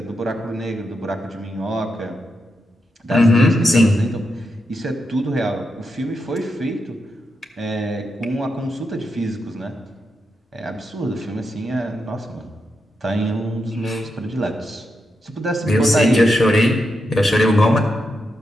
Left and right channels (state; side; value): normal; both; correlation 0.85